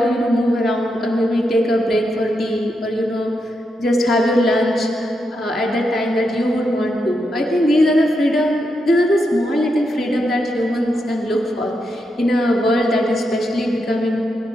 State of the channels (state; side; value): normal; both; correlation 0.84